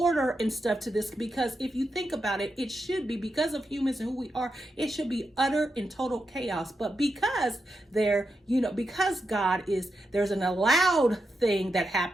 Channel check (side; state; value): both; normal; correlation 0.86